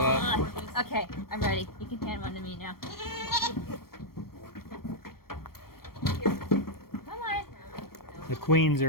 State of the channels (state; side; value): late; right; 0.94 ms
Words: Okay, I'm ready. You can hand one to me now. Come on. The queens